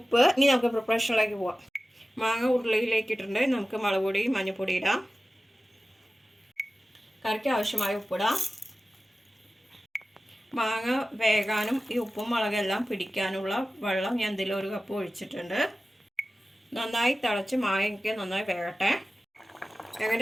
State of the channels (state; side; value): normal; both; correlation 0.95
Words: ഇനി നമുക്ക് പ്രിപ്പറേഷനിലേക്ക് പോവാം. മാങ്ങ ഉരുളിയിലേക്ക് ഇട്ടിട്ടുണ്ട്. നമുക്ക് മുളക് പൊടി മഞ്ഞൾപ്പൊടി ഇടാം. കറിക്ക് ആവശ്യമായ ഉപ്പിടാം. മാങ്ങ വേകാനും ഈ ഉപ്പും മുളകെല്ലാം പിടിക്കാനുള്ള വെള്ളം ഞാൻ ഇതിൽ 1 കപ്പ് ഒഴിച്ചിട്ടുണ്ട്. നന്നായി തിളച്ച് മാങ്ങയ്ക്ക് നന്നായി വേകട്ടെ.